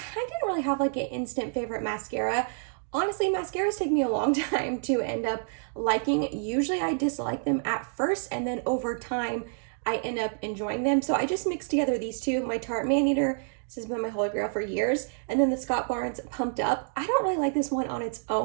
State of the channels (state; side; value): silent; left; digital silence